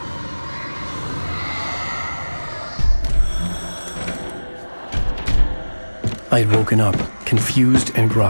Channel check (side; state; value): both; inverted; correlation -1.00